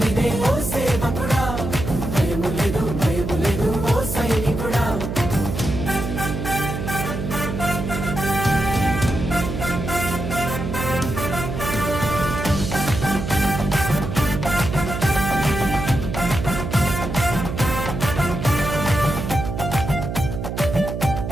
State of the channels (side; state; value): right; noise; hum, 5 dB below the sound